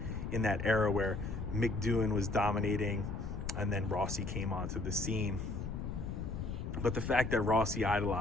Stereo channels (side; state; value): left; noise; rumble, 5 dB below the sound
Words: era where Mick Doohan was dominating, and then Rossi came onto the scene. But the fact that Rossi